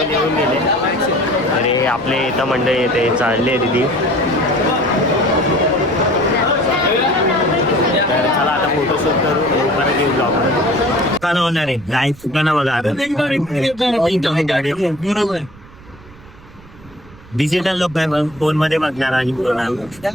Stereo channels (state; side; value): noise; right; rumble, 22 dB below the sound